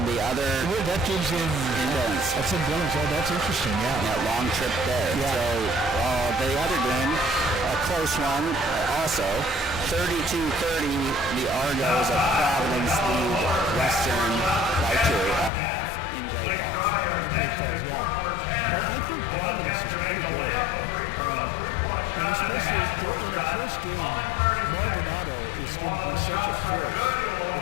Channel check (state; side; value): drops out; right; at 15.5 s